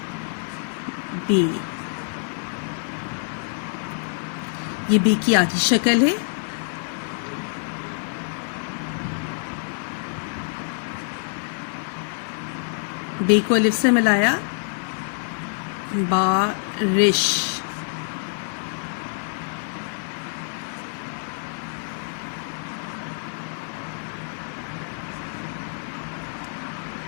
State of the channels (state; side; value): silent; right; 61 dB below the other